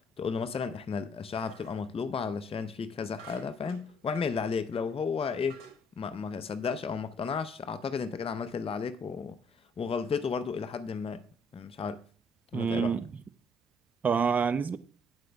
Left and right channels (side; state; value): both; normal; correlation 0.65